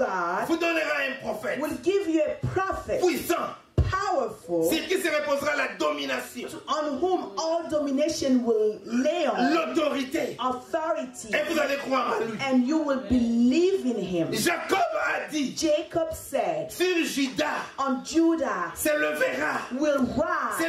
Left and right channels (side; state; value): both; identical; correlation 1.00